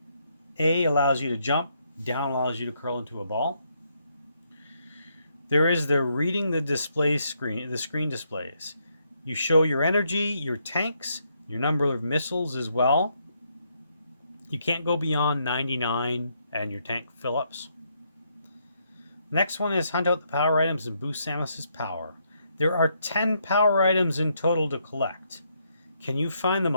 A allows you to jump. Down allows you to curl into a ball. There is the reading the display screen. The screen displays. You show your energy, your tanks, your number of missiles as well. You can't go beyond 99 and your tank fill-ups. Next one is hunt out the power items and boost Samus's power. There are 10 power items in total to collect. Can you find them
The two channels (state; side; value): inverted; both; correlation -0.75